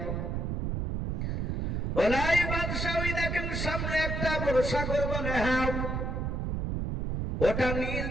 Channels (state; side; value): noise; right; rumble, 1 dB below the sound